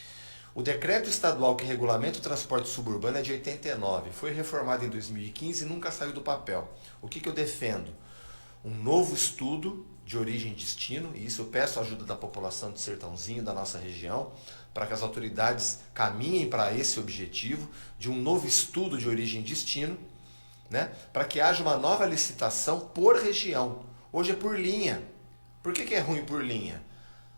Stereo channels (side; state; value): both; inverted; correlation -1.00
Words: O decreto estadual que regulamenta o transporte suburbano é de 89. Foi reformado em 2015 e nunca saiu do papel. O que eu defendo? Um novo estudo de origem e destino, e isso eu peço a ajuda da população de Sertãozinho, da nossa região, para que as autoridades caminhem para esse objetivo de um novo estudo de origem e destino, né, para que haja uma nova licitação por região. Hoje é por linha. Por que é ruim por linha?